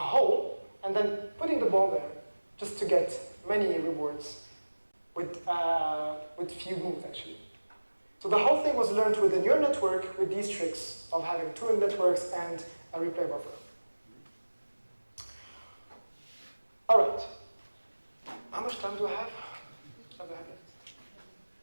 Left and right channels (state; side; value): inverted; both; correlation -1.00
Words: and then putting the ball there just to get many rewards with few moves, actually. So the whole thing was learned with a neural network with these tricks of having two networks and a replay buffer. All right. How much time do I have? What do I have left?